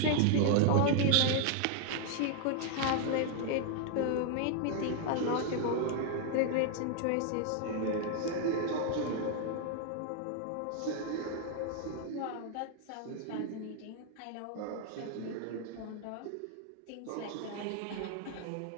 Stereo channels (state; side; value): different; both; correlation 0.00